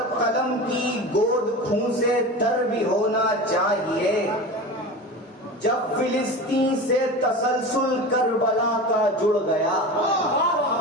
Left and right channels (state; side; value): normal; both; correlation 0.30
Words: قلم کی گود خون سے تر بھی ہونا چاہیے. جب فلسطین سے تسلسل کربلا کا جڑ گیا،